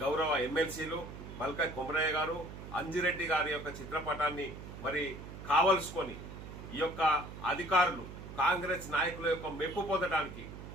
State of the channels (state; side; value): noise; right; hum, 12 dB below the sound